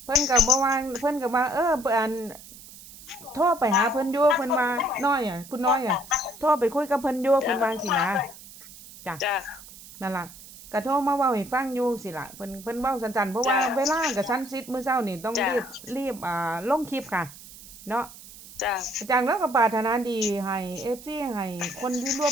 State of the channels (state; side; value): noise; right; hiss, 18 dB below the sound